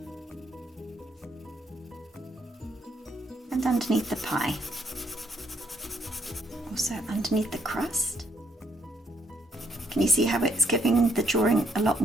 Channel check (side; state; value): both; normal; correlation 0.73